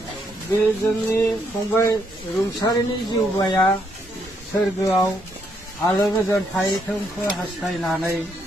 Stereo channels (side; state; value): both; normal; correlation 0.74